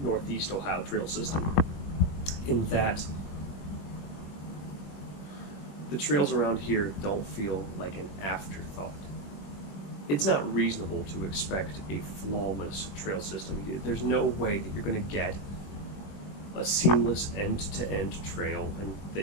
Ohio trail system, in that the trails around here don't feel like an afterthought. It's not reasonable to expect a flawless trail system. There's no way that you're going to get a seamless end-to-end trail and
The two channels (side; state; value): right; late; 21 ms